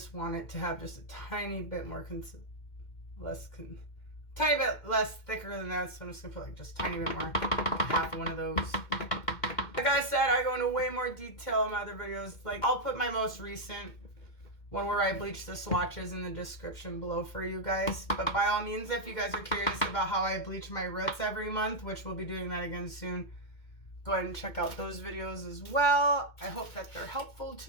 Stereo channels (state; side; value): late; right; 2.1 ms